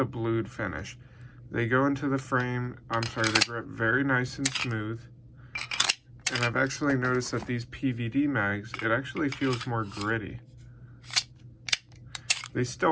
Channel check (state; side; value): identical; both; correlation 1.00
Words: blued finish. They go into the frame, they grip very nice and smooth. And I've actually noticed that these PVD mags, it actually feels more gritty. They